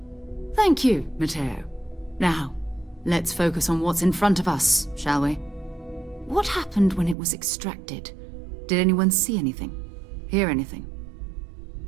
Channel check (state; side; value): drops out; left; at 7.2 s